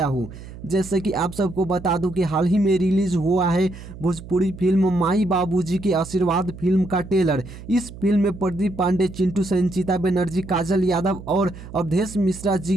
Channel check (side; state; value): right; noise; hum, 15 dB below the sound